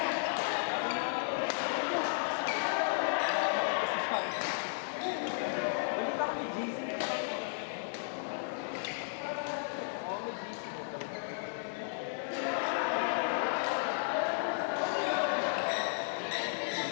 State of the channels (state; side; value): silent; right; digital silence